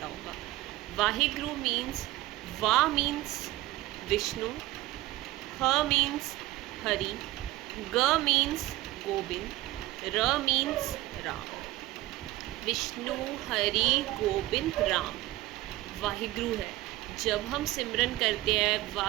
होगा। वाहिगुरु मीन्स, वा मीन्स विष्णु, ह मीन्स हरि, ग मीन्स गोविंद, र मीन्स राम। विष्णु, हरि, गोविंद, राम वाहिगुरु है। जब हम सिमरन करते हैं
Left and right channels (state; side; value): quieter; left; 17.3 dB